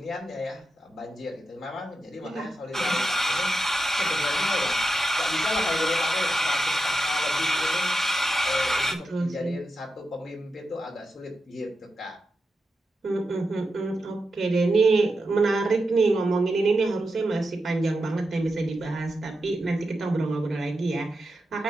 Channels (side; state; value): both; normal; correlation 0.88